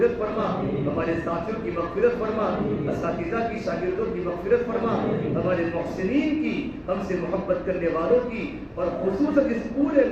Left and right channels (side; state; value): both; identical; correlation 1.00